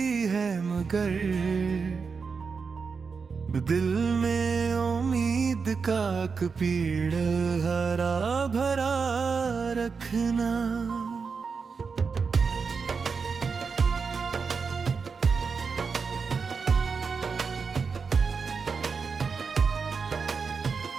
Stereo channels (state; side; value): quieter; left; 5.3 dB